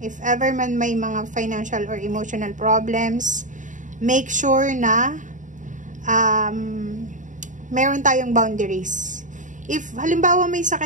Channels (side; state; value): left; late; 0.37 ms